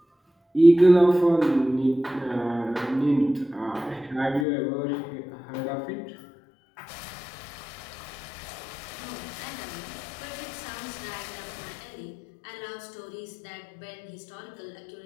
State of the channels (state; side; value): drops out; right; at 4.5 s